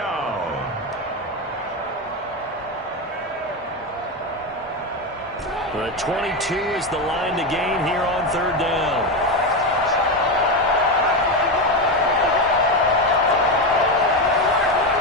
The 22 is the line to gain here on 3rd down.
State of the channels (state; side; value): normal; both; correlation 0.13